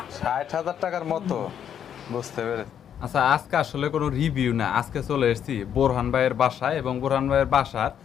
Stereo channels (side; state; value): right; quieter; 9.0 dB